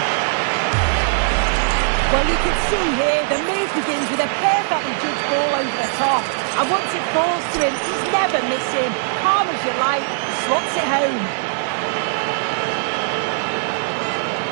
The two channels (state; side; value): silent; left; digital silence